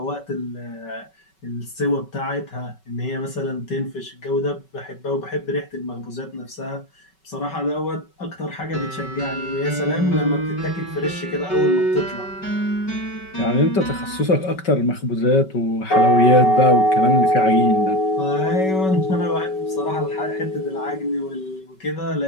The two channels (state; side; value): late; right; 5.3 ms